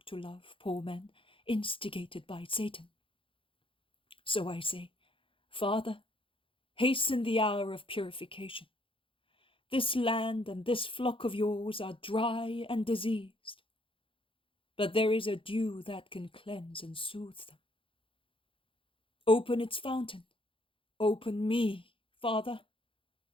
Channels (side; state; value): right; late; 0.25 ms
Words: to love, poor men, instigated by Satan. So I say, Father, hasten the hour of purification. This land and this flock of yours are dry and diseased, but there is a dew that can cleanse and soothe them. Open its fountain. Open me, Father.